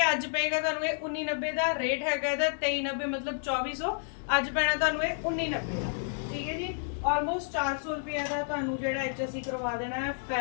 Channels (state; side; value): silent; right; 58 dB below the other